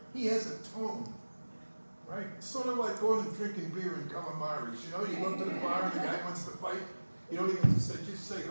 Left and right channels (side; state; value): both; inverted; correlation -1.00